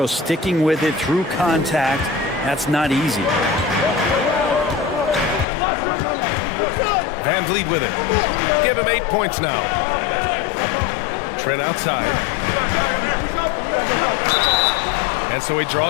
sticking with it through contact. That's not easy. Van Vliet with it. Give him 8 points now. Trent outside. And so he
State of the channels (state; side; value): drops out; right; at 5.5 s